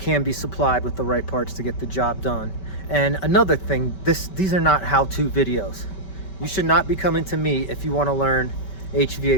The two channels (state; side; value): late; right; 5.2 ms